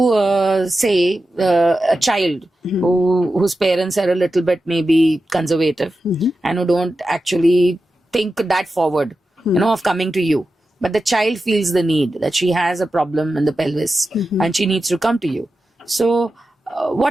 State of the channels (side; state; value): both; normal; correlation 0.92